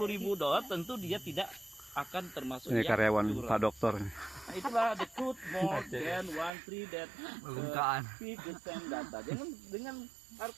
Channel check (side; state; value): left; drops out; at 6.5 s